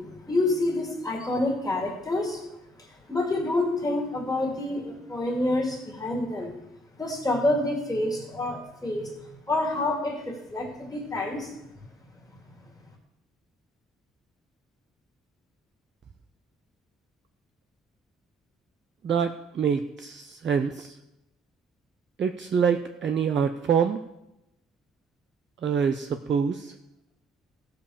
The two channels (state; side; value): normal; both; correlation 0.64